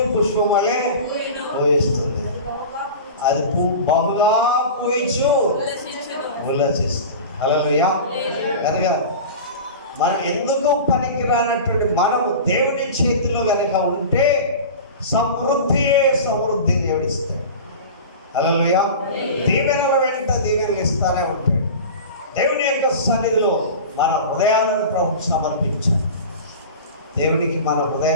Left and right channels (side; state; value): both; inverted; correlation -0.33